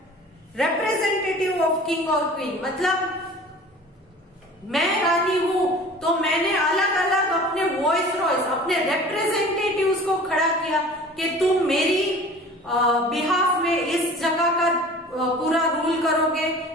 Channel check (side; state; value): both; normal; correlation 0.43